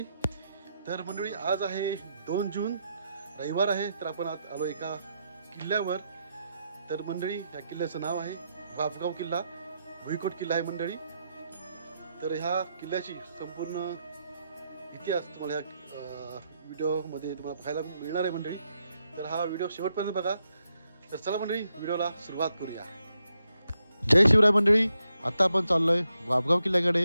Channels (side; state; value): both; inverted; correlation -0.82